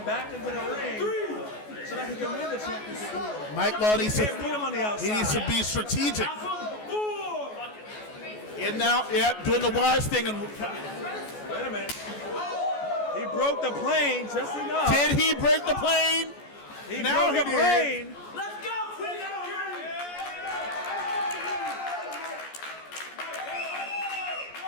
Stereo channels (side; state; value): right; late; 14 ms